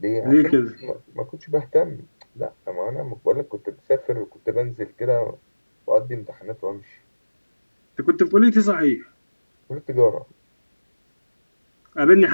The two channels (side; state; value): both; inverted; correlation -1.00